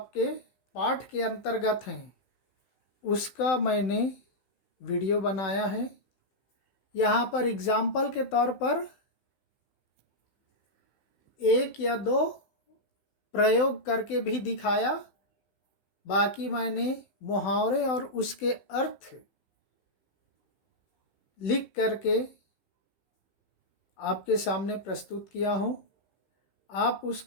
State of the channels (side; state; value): right; late; 16 ms